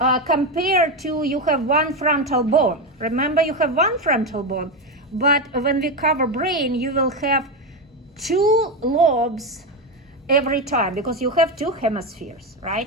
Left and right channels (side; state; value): both; normal; correlation 0.13